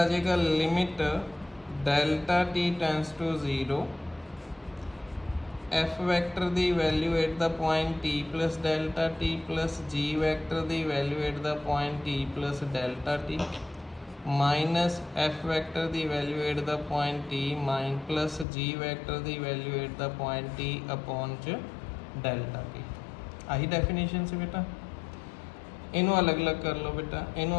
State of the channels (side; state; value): right; drops out; at 18.4 s